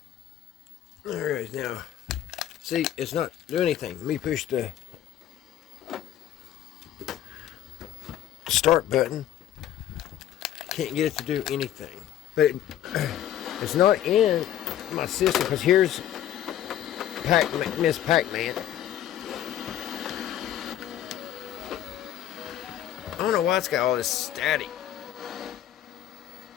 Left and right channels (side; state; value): right; quieter; 11.5 dB